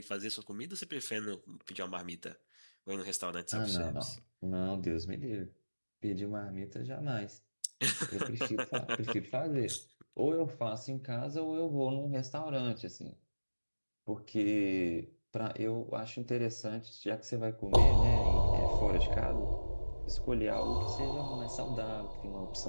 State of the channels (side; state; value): both; inverted; correlation -1.00